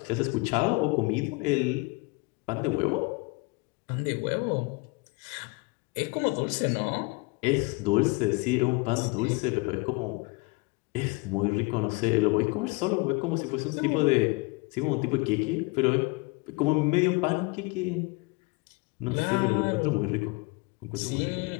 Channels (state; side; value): quieter; right; 27.1 dB